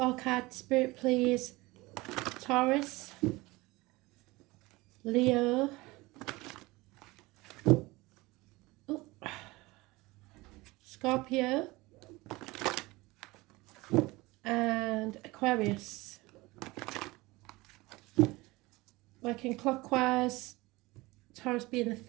card spirit, please. Taurus, Leo, Scorpio, and Aquarius. Working clockwise, Taurus being the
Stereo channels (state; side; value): quieter; left; 21.6 dB